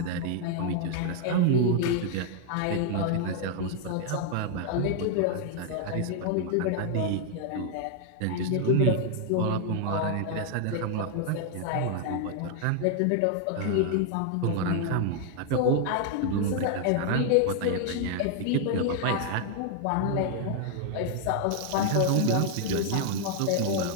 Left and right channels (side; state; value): both; different; correlation 0.00